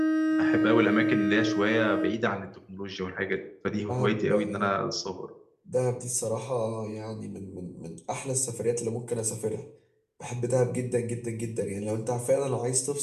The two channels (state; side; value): identical; both; correlation 1.00